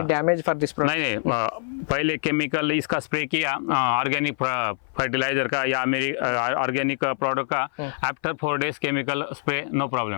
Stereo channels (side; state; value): right; silent; 57 dB below the other